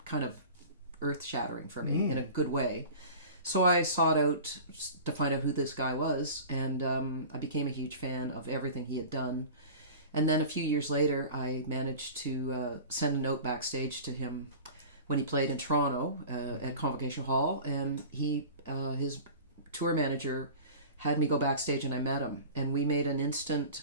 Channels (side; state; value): both; inverted; correlation -0.38